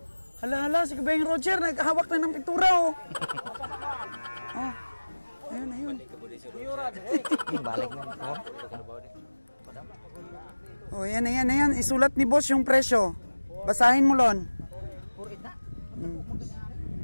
Hala, si Kabeng Roger, naghahawak na ng pintura, oh. Oh, ayun. Balik mo. Oh, ayan. Isulat ni boss yung presyo. Basahin mo, Lon. 4-8 na?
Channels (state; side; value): inverted; both; correlation -1.00